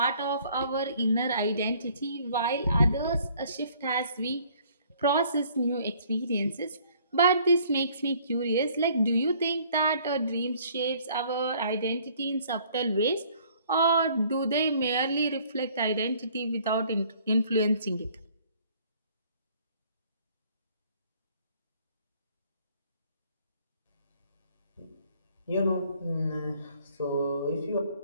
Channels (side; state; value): both; inverted; correlation -0.59